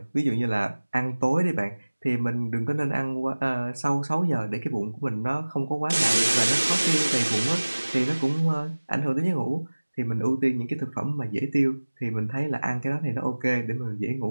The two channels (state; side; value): inverted; both; correlation -1.00